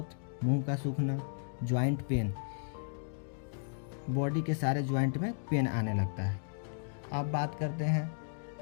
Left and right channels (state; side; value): silent; right; digital silence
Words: मुंह का सूखना। जॉइंट पेन, बॉडी के सारे जॉइंट में पेन आने लगता है। अब बात करते हैं